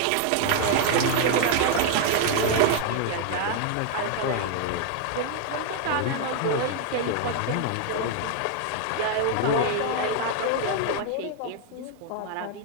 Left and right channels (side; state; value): both; different; correlation 0.00